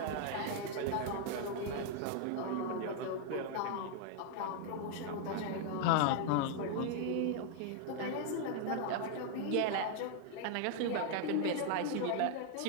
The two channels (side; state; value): both; different; correlation 0.00